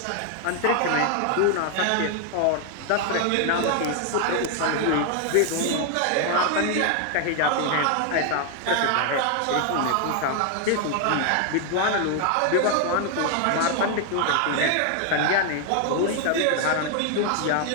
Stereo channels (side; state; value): both; different; correlation 0.00